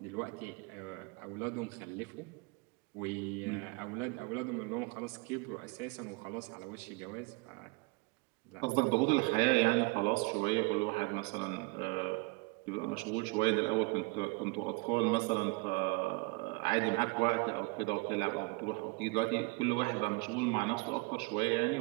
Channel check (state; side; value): quieter; left; 27.3 dB